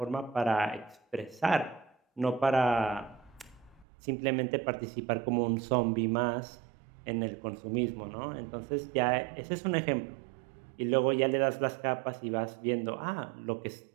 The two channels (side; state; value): left; drops out; at 3.9 s